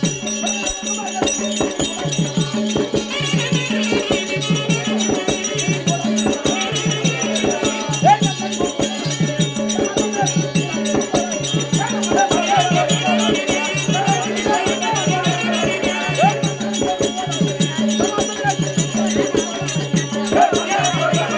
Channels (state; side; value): identical; both; correlation 1.00